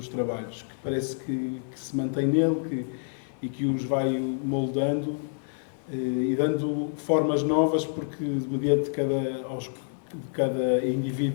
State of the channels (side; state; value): right; silent; digital silence